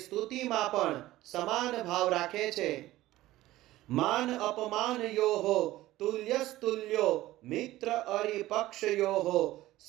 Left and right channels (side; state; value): left; quieter; 16.3 dB